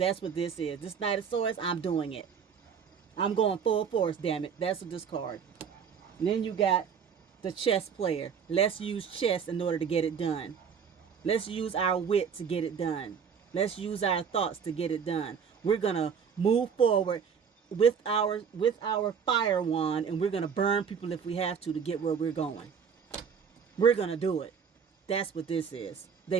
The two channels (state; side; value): quieter; left; 6.8 dB